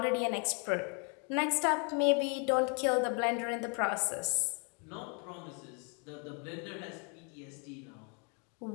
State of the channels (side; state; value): right; quieter; 37.5 dB